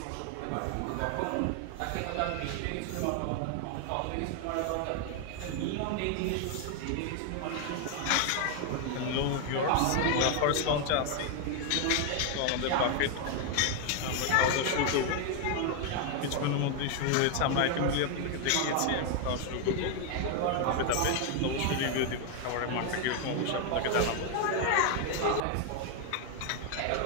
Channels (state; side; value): different; both; correlation 0.01